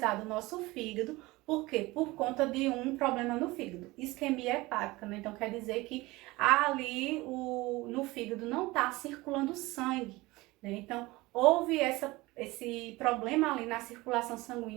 o nosso fígado. Por quê? Por conta de um problema no fígado, isquemia hepática, né? Então, quer dizer que ali no fígado não está circulando sangue, né? Então, houve esse problema ali na circulação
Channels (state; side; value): quieter; left; 20.9 dB